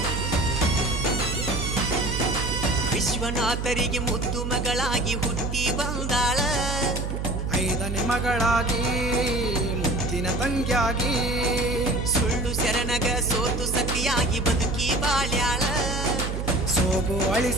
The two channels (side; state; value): right; noise; hum, 3 dB below the sound